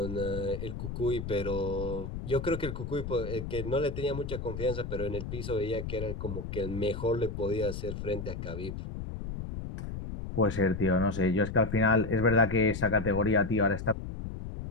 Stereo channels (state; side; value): noise; left; rumble, 7 dB below the sound